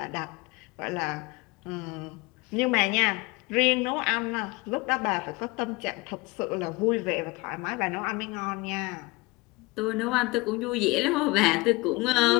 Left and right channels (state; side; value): quieter; right; 23.8 dB